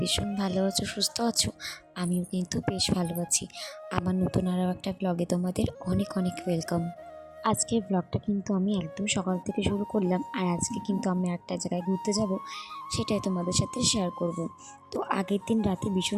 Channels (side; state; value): both; identical; correlation 1.00